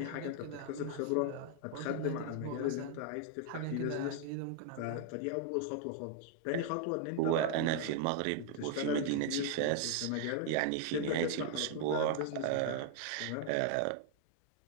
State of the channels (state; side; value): different; both; correlation 0.00